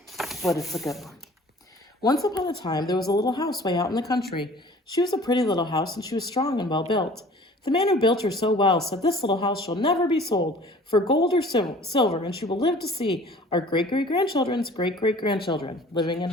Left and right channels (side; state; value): both; normal; correlation 0.48